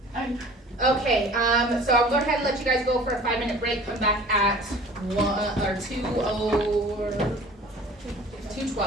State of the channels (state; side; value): normal; both; correlation 0.45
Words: okay, so I'll go ahead and let you guys go for a 5-minute break, come back at